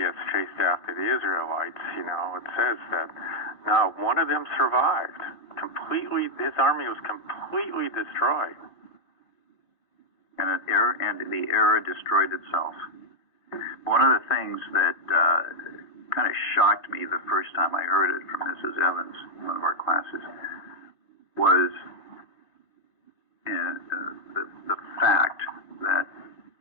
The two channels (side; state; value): right; late; 3.1 ms